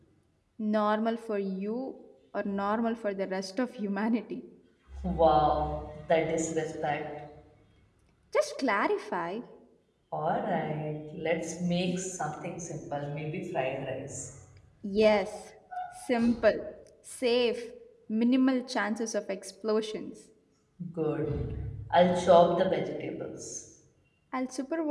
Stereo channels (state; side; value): identical; both; correlation 1.00